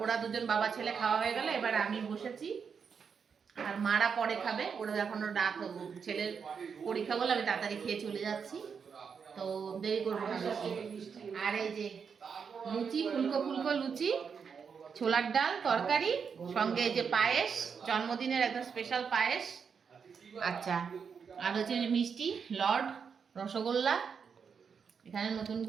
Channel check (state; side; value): quieter; left; 6.3 dB